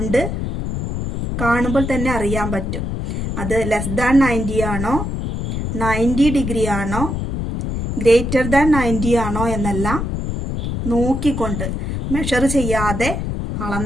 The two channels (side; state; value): left; noise; rumble, 3 dB below the sound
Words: കാണുമ്പോൾ തന്നെ അറിയാൻ പറ്റും അത് ലെസ് ദാൻ 90 ആണോ, 90 ഡിഗ്രി ആണോ, ഗ്രേറ്റർ ദാൻ 90 ആണോ എന്നെല്ലാം നോക്കിക്കൊണ്ട് മെഷർ ചെയ്യാതെ